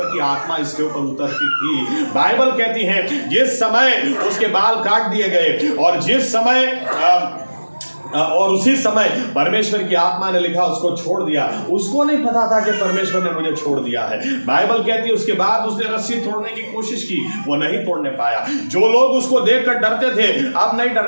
की आत्मा इसके ऊपर उतरती थी। बाइबल कहती है जिस समय उसके बाल काट दिए गए और जिस समय और उसी समय परमेश्वर की आत्मा ने लिखा उसको छोड़ दिया। उसको नहीं पता था कि परमेश्वर ने मुझे छोड़ दिया है। बाइबल कहती है उसके बाद उसने रस्सी तोड़ने की कोशिश की, वो नहीं तोड़ने पाया। जो लोग उसको देखकर डरते थे अब नहीं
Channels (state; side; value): inverted; both; correlation -1.00